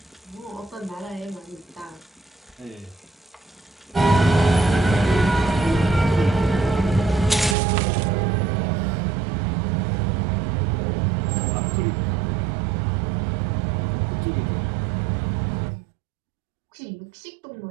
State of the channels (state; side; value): drops out; left; at 7.6 s